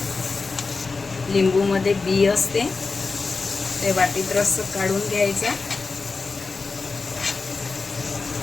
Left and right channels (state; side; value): quieter; right; 4.2 dB